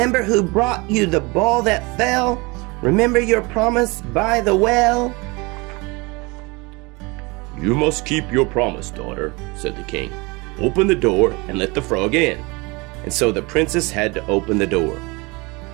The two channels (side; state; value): left; quieter; 26.0 dB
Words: who brought you the ball that fell? Remember your promise by the well?" "You must keep your promise, daughter," said the king. "Open the door and let the frog in." And so the princess had to open the door.